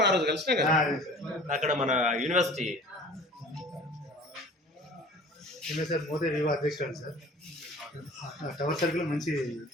ఆ రోజు కలిసినా కదా అక్కడ మన యూనివర్సిటీ సార్. మోదే వివా అధ్యక్షుడు సార్. టవర్ సర్కిల్ మంచి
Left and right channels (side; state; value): both; normal; correlation 0.44